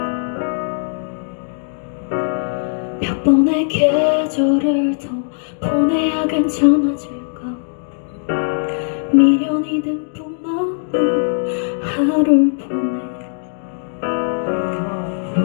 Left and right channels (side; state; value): right; silent; digital silence